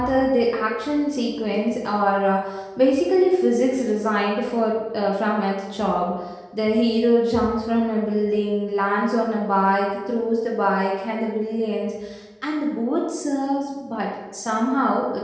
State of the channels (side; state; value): both; identical; correlation 1.00